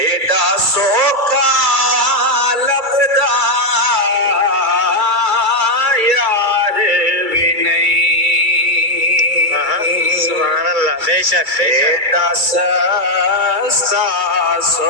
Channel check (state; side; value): late; left; 2.3 ms